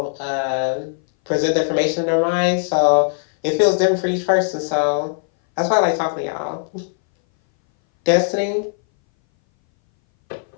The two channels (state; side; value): silent; right; 61 dB below the other